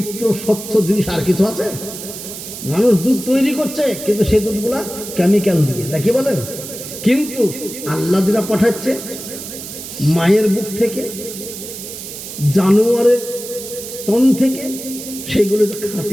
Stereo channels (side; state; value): right; noise; hiss, 10 dB below the sound